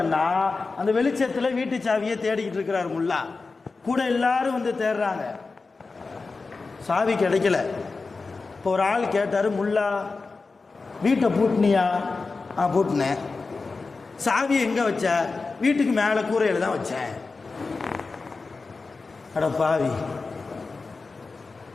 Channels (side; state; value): right; quieter; 4.1 dB